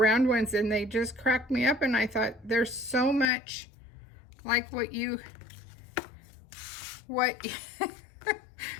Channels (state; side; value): drops out; right; at 3.3 s